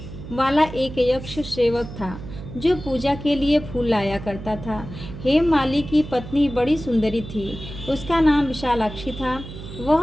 वाला एक यक्ष सेवक था जो पूजा के लिए फूल लाया करता था। हेममाली की पत्नी बड़ी सुंदरी थी, उसका नाम विशालाक्षी था।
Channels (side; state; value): right; noise; hum, 12 dB below the sound